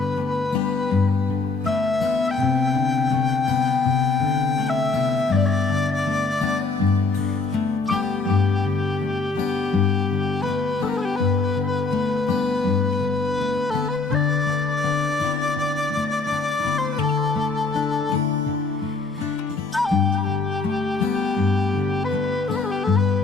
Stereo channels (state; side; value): quieter; right; 3.7 dB